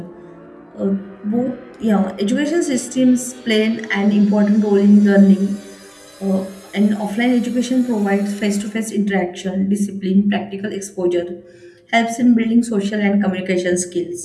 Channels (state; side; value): identical; both; correlation 1.00